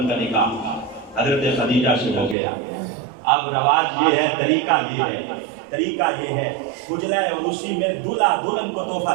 کا نکاح حضرت خدیجہ سے ہو گیا. اب رواج یہ ہے، طریقہ یہ ہے اجلا عروسی میں دلہا دلہن کو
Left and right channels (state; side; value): drops out; left; at 2.4 s